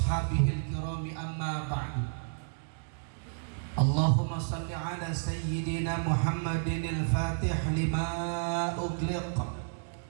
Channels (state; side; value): silent; left; digital silence